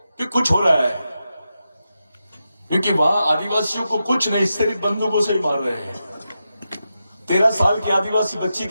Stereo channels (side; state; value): both; inverted; correlation -0.89